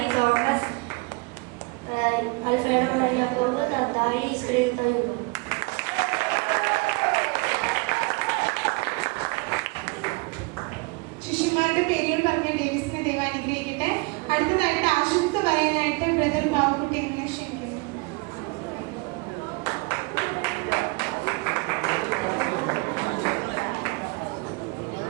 തോമസ്, അൽഫേന, യാക്കോബ്, തദ്ദായി, ഇസ്കറിയോത്തായി. ശിഷ്യന്മാരുടെ പേരുകൾ പറഞ്ഞ ഡേവിസിനെ ദൈവം അനുഗ്രഹിക്കട്ടെ. അടുത്തതായിട്ട് ആശംസ പറയാനായിട്ട് ബ്രദർ ബാബുക്കുട്ടി എങ്ങനെ ക്ഷണിക്കുന്നു.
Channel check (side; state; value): left; quieter; 27.7 dB